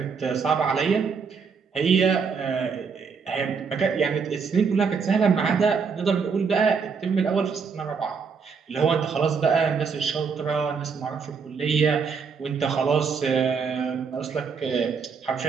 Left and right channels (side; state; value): left; quieter; 5.7 dB